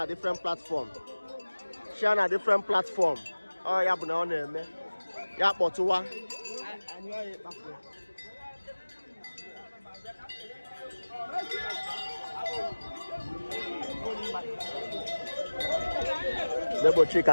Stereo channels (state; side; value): inverted; both; correlation -1.00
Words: different platform ọ ya bụ na ọ na-eme ya kpọtụwa Nebo